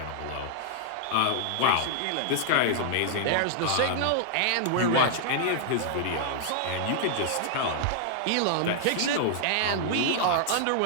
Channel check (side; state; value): both; different; correlation -0.01